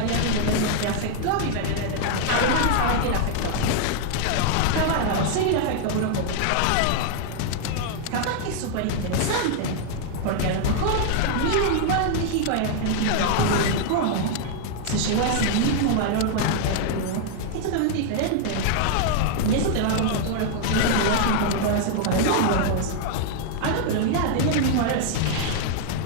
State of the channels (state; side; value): different; both; correlation 0.00